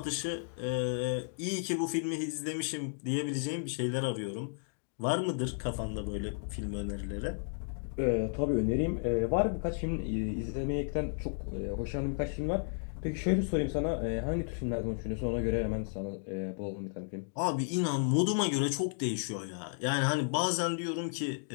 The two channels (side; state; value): right; silent; digital silence